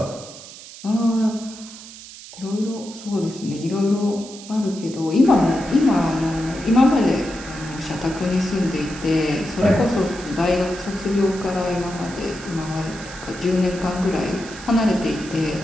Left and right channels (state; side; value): noise; right; hiss, 16 dB below the sound